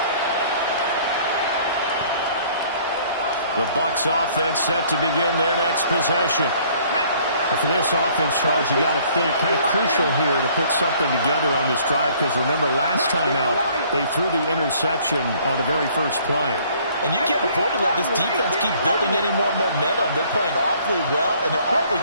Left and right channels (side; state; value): both; inverted; correlation -0.58